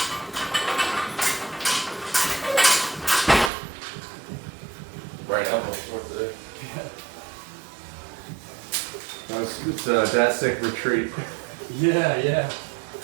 Right elbow short today. It's Dat Sick Retreat. Yeah, yeah.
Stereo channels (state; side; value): drops out; left; at 3.5 s